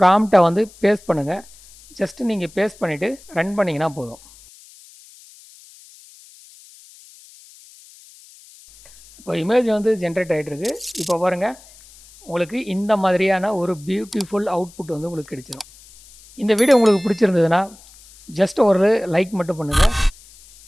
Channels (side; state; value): left; noise; hiss, 24 dB below the sound